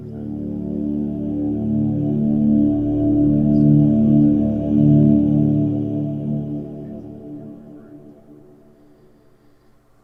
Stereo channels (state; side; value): identical; both; correlation 1.00